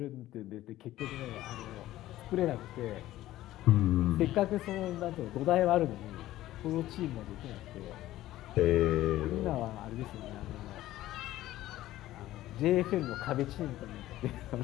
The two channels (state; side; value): quieter; right; 15.0 dB